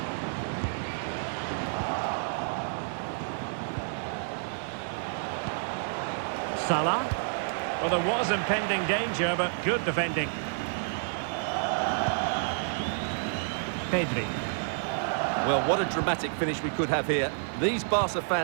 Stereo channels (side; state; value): left; silent; 58 dB below the other